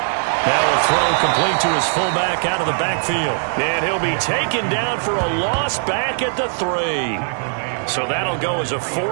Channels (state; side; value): silent; left; digital silence